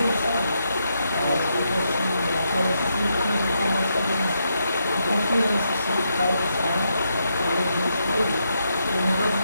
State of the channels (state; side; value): inverted; both; correlation -0.81